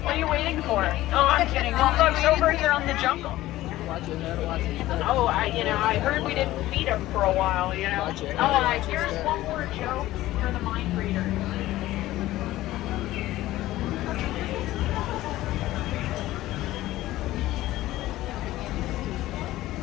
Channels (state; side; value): quieter; right; 16.0 dB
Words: What are you waiting for? Oh, I'm kidding. Well, folks, over here on the jungle, Watch your head, watch your step. Oh, I heard we didn't feed them for a while, Watch your head, Oh, watch your here's step. one more joke for the mind reader.